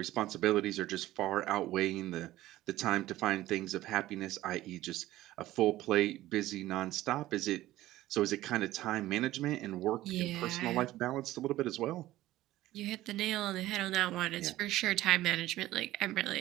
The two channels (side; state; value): left; quieter; 15.6 dB